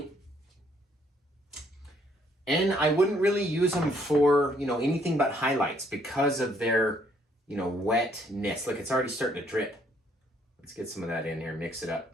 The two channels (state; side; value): normal; both; correlation 0.67